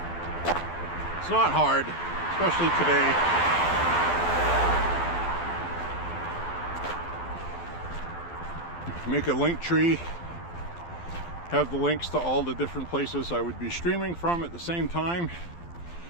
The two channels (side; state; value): right; late; 12 ms